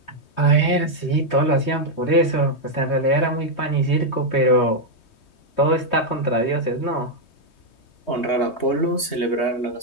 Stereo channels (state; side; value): late; right; 3.2 ms